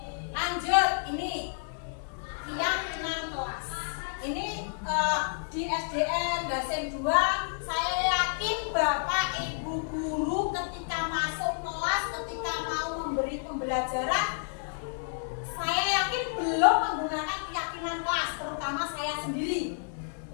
Lanjut, ini keyakinan kelas. Ini di SDN Dasen 2, saya yakin Bapak Ibu guru ketika masuk kelas, ketika mau memberi pembelajaran, saya yakin belum menggunakan keyakinan kelas, terutama saya sendiri.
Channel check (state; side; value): silent; right; digital silence